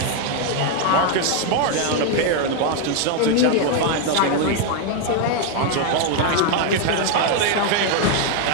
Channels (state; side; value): different; both; correlation 0.01